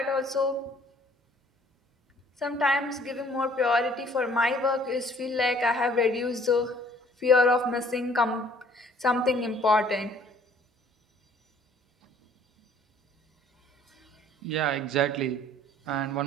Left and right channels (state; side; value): normal; both; correlation 0.57